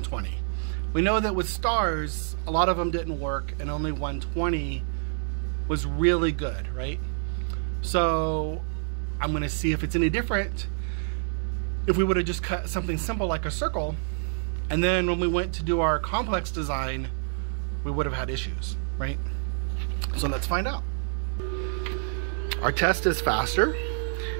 We know that with stars, a lot of them didn't work, and only 120 was really good, right? So I'm gonna see if it's any different if we would have just cut something simple like a circle, and then when we went to do our complex design, we would have had issues, right? So let's find out. Our test is faster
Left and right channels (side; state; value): left; silent; 56 dB below the other